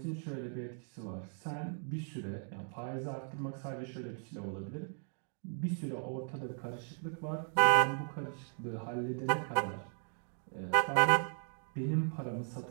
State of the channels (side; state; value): left; silent; 53 dB below the other